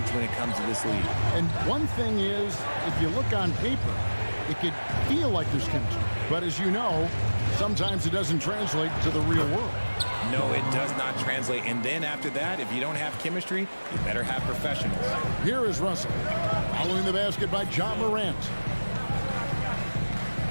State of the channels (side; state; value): both; inverted; correlation -1.00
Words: when it comes to this league. And one thing is, if you look on paper, it could feel like there's chemistry. But as you know, sometimes it doesn't translate to the real world. No, it does not translate. And then after that, if you don't have chemistry, you better have professionals. Here is Russell. Following the basket by Ja Morant.